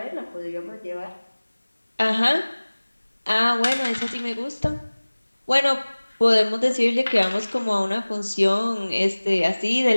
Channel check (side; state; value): both; inverted; correlation -1.00